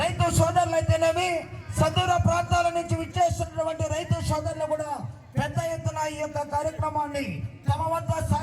సోదరులైతేనేమి సదూర ప్రాంతాల నుంచి విచ్చేస్తున్నటువంటి రైతు సోదరులు కూడా పెద్ద ఎత్తున ఈ యొక్క కార్యక్రమాన్ని తమ వద్ద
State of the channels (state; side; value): identical; both; correlation 1.00